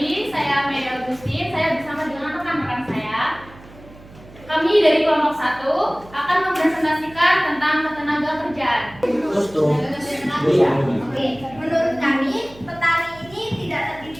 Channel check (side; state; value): right; noise; hum, 21 dB below the sound